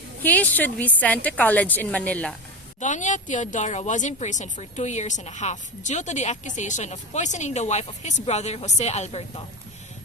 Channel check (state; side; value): normal; both; correlation 0.19